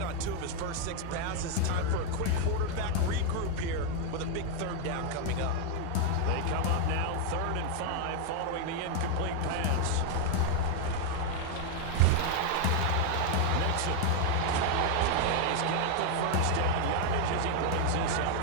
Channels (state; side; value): different; both; correlation 0.01